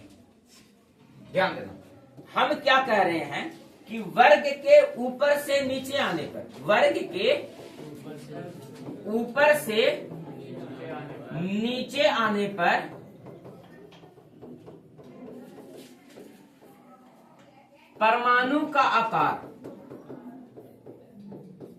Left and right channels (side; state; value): both; identical; correlation 1.00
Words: ध्यान देना, हम क्या कह रहे हैं कि वर्ग के ऊपर से नीचे आने पर, वर्ग के ऊपर से नीचे आने पर परमाणु का आकार